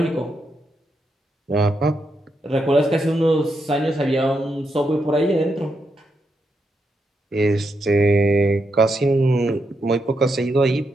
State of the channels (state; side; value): normal; both; correlation 0.83